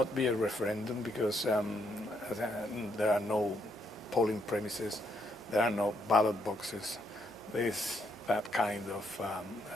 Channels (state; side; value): normal; both; correlation 0.74